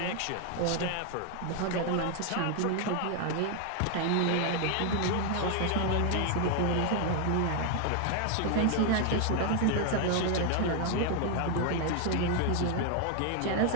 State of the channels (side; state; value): both; different; correlation 0.00